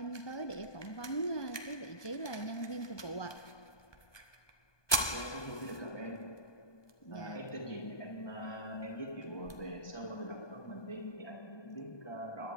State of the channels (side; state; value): right; late; 1.2 ms